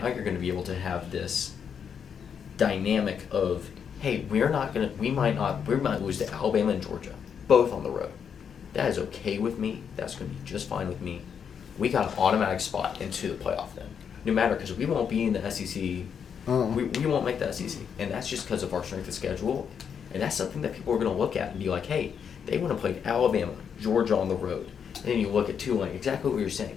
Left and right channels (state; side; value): quieter; right; 7.3 dB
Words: you're going to be able to have this dynamic of, hey, we might lose to Alabama and Georgia, both on the road. That is okay with me. That's going to be just fine with me. We got an automatic spot into the playoff then, no matter, because we won't be in the SEC. We won't make the SEC, and that's just because of our strength of schedule. And that's something that people are going to look at and be like, hey, they want to play Alabama, Georgia on the road. And then you look at Tulane, exactly what you're